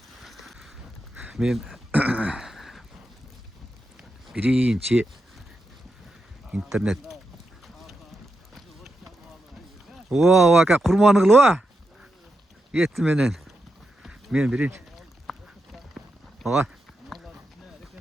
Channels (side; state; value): both; normal; correlation 0.86